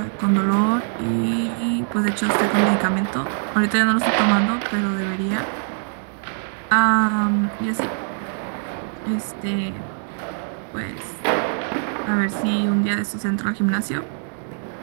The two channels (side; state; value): left; silent; 64 dB below the other